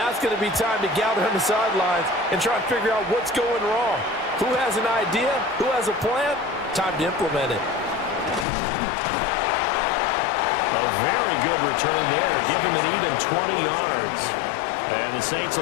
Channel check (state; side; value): drops out; right; at 8.5 s